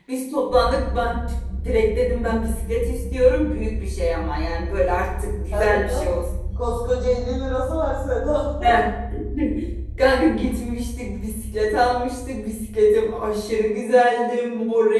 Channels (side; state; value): both; identical; correlation 1.00